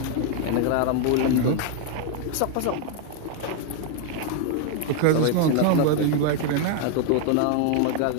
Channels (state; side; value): different; both; correlation 0.00